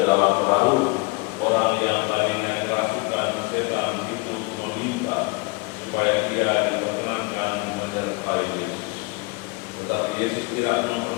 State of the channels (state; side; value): quieter; right; 27.2 dB